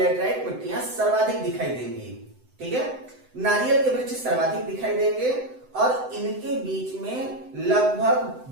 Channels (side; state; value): left; late; 7.9 ms